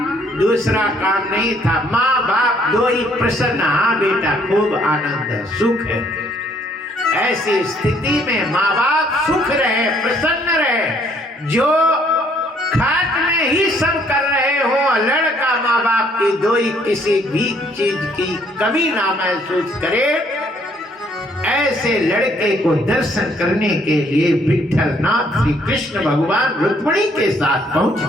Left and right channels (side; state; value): both; normal; correlation 0.65